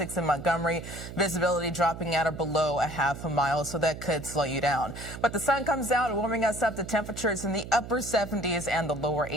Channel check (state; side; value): noise; right; hum, 11 dB below the sound